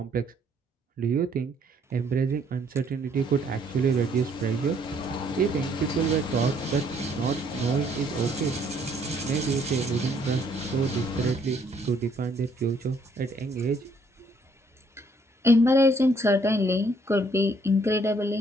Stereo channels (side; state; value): both; normal; correlation 0.65